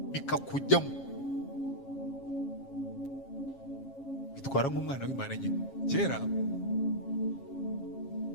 bikakujyamo, bitwara nk'umwana w'Imana nyine. Kera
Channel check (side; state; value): right; late; 7.3 ms